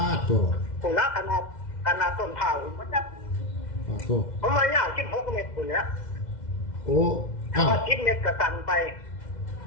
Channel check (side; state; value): right; late; 2.1 ms